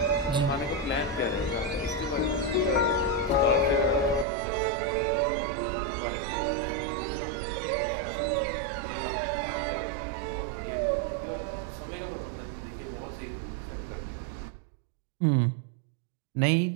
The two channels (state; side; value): drops out; left; at 4.2 s